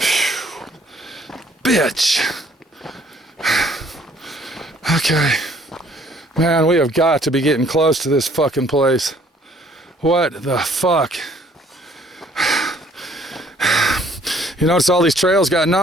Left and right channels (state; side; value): normal; both; correlation 0.60